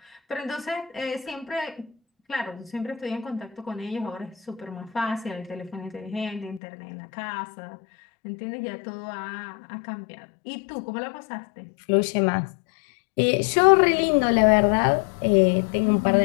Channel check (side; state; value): right; drops out; at 6.6 s